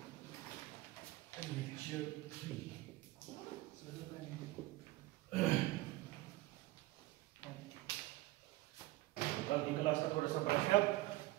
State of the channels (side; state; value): left; quieter; 18.7 dB